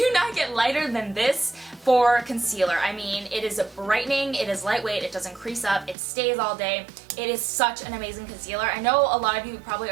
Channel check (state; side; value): drops out; left; at 6.0 s